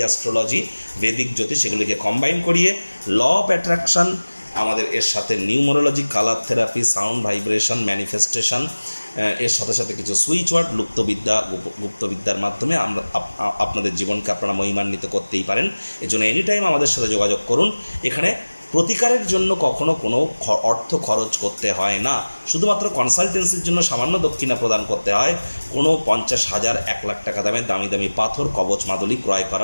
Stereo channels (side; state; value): both; inverted; correlation -1.00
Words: অ্যাস্ট্রোলজি, বেদিক জ্যোতিষ, সেগুলিকে কম্বাইন করিয়ে ল অফ অ্যাট্রাকশন আমাদের এর সাথে numerology, colour therapy, sound vibration, manifestation, এর সাথে সাথে কিছু সুইচ ওয়ার্ড, গুপ্তবিদ্যার মাধ্যমে আমরা আপনাদের জীবনকে আপনারা মহিমান্বিত করতেই পারেন। এজন্য এনি টাইম আমাদের সাথে যোগাযোগ করুন। এখানে প্রতিকারের জন্য কখনো কোনো অর্থ খরচ করতে হয় না, শুধুমাত্র কনসালটেন্সির জন্য সামান্য দক্ষিণা প্রদান করতে হয়। কোনো 50,000 1 লাখ টাকা দামের দামি দামি পাথর, কবচ, মাদুলি ক্রয়